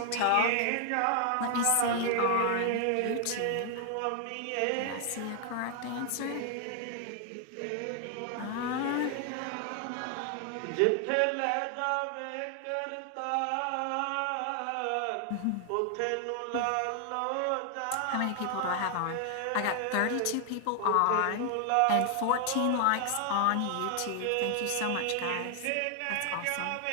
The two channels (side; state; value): both; different; correlation 0.00